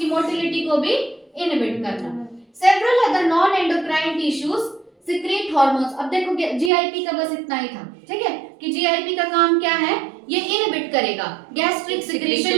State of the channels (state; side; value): drops out; left; at 6.7 s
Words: मोटिलिटी को भी इनहिबिट करना। Several other non endocrine tissues secrete hormones. अब देखो जीआईपी का बस इतना ही था। ठीक है, कि जीआईपी का काम क्या है? ये इनहिबिट करेगा गैस्ट्रिक